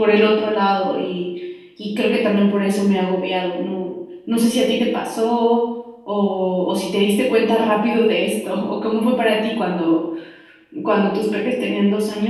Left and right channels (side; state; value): both; identical; correlation 1.00